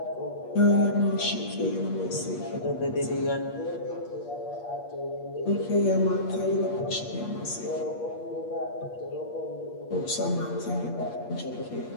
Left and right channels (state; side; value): late; right; 8.4 ms